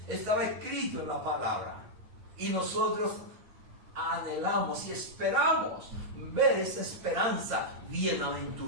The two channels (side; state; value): left; late; 9.3 ms